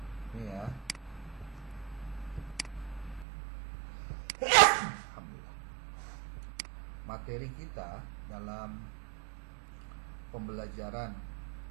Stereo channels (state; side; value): drops out; left; at 3.2 s